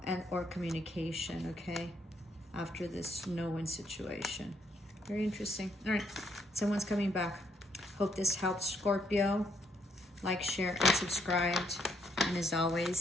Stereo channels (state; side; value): normal; both; correlation 0.73